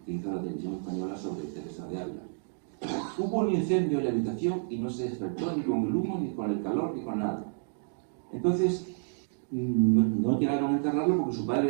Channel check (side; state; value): left; silent; digital silence